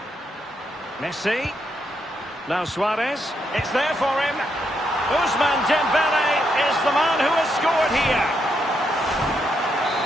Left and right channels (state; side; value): normal; both; correlation 0.79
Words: Messi. Now Suarez. It's there for him. Ousmane Dembele is the man who has scored here.